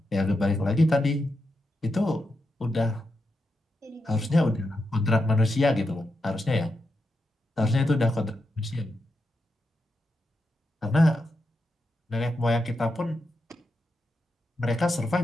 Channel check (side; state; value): both; normal; correlation 0.86